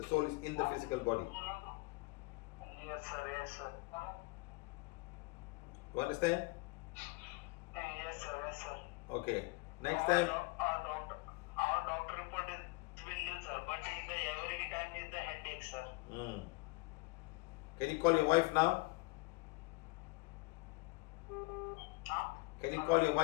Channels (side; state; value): right; quieter; 25.6 dB